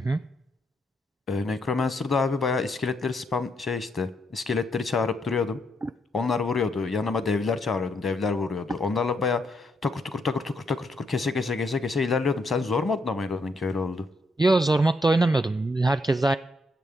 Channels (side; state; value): both; normal; correlation 0.76